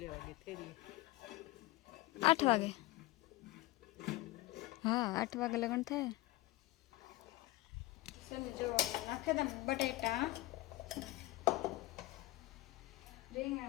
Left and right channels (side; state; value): right; quieter; 19.0 dB